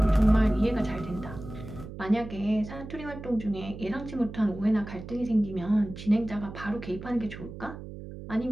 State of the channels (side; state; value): right; noise; hum, 12 dB below the sound